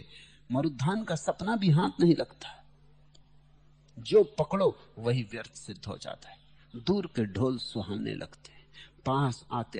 मरुद्धान का सपना भी हाथ नहीं लगता। जो पकड़ो वही व्यर्थ सिद्ध हो जाता है। दूर के ढोल सुहाने लगते, पास आते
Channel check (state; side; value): identical; both; correlation 1.00